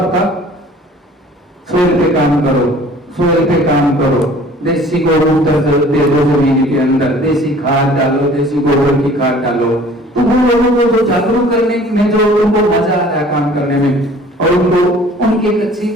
का सोइल पे काम करो, सोइल पे काम करो, देसी गोमूत्र दे दो जमीन के अंदर, देसी खाद डालो, देसी गोबर की खाद डालो। तो वो लोगों को जो जागरूक करने में जो उनको मजा आता है काम करने में, और उनको उनकी एक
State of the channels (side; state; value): both; normal; correlation 0.50